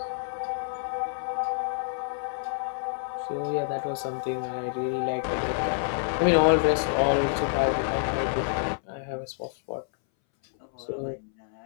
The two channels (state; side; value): silent; right; 59 dB below the other